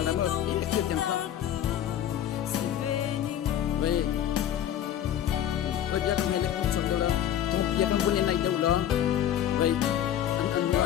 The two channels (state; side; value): quieter; right; 10.7 dB